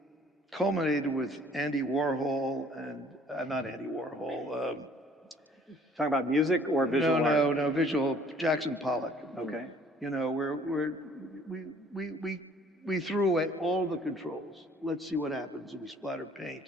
culminated with Andy Warhol and, not Andy Warhol. Talking about music or visual art? No, visual, Jackson Pollock. Okay. You know, we threw away all the controls. Let's see what happens, and we splattered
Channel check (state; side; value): normal; both; correlation 0.57